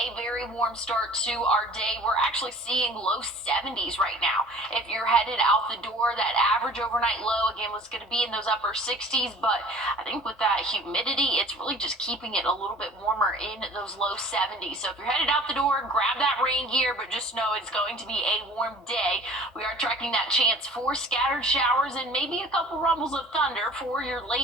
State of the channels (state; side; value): normal; both; correlation 0.46